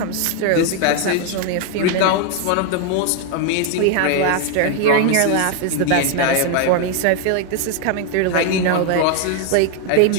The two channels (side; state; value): both; different; correlation 0.01